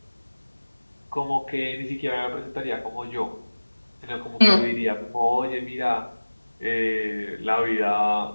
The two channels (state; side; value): inverted; both; correlation -1.00